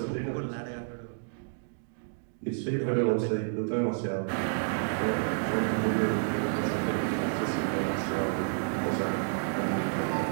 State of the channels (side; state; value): left; silent; digital silence